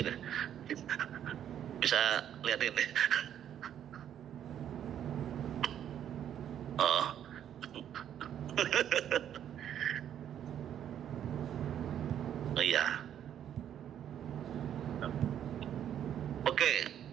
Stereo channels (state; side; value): quieter; left; 10.0 dB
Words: Bisa lihat ini. Oh. Oh iya. Oke,